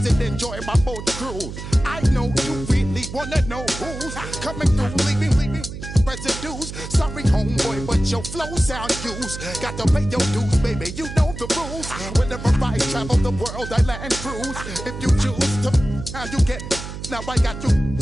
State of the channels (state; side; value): noise; right; hum, 9 dB below the sound